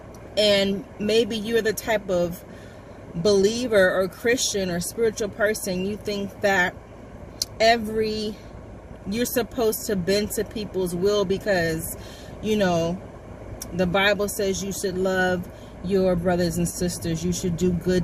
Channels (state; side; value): identical; both; correlation 1.00